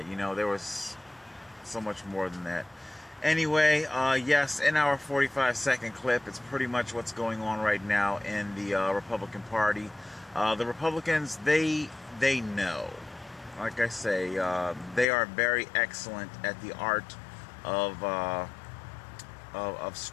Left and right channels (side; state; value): right; drops out; at 15.1 s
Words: you know, there was so much more than that. Anyway, yes, in our 45-second clip, it's pretty much what's going on right now in the Republican Party. The Republicans, they know. Like I say, they are very excellent at the art of